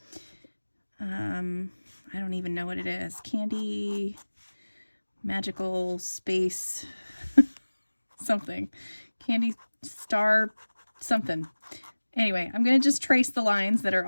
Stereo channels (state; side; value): inverted; both; correlation -1.00